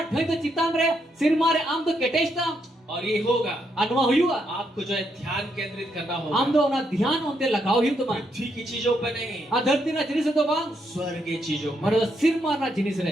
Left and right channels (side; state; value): both; normal; correlation 0.78